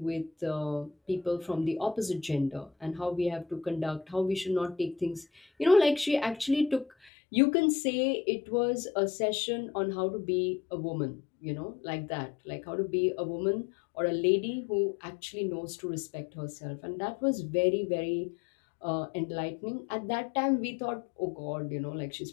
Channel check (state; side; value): drops out; right; at 7.1 s